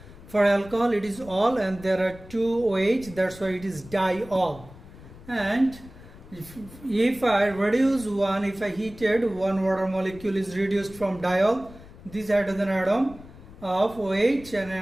For alcohol it is all, and there are two OH, that's why it is diol. And if I reduce one, if I heated, one water molecule is reduced from diol. This hydrogen atom of OH and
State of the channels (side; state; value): left; noise; rumble, 19 dB below the sound